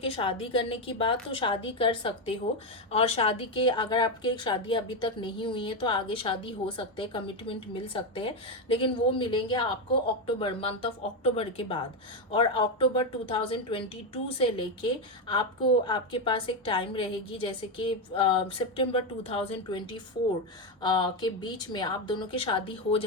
शादी करने की बात, तो शादी कर सकते हो। और शादी के अगर आपके शादी अभी तक नहीं हुई है तो आगे शादी हो सकते हैं, कमिटमेंट मिल सकते हैं। लेकिन वो मिलेंगे आपको अक्टूबर, मंथ ऑफ अक्टूबर के बाद। और अक्टूबर 2022 से लेके आपको आपके पास एक टाइम रहेगी, जैसे कि सितंबर 2024 के बीच में आप दोनों की शादी हो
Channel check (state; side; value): normal; both; correlation 0.09